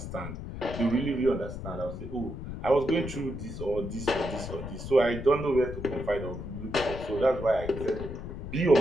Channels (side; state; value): left; noise; rumble, 8 dB below the sound